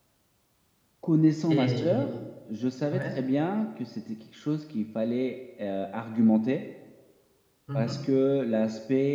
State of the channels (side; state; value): both; identical; correlation 1.00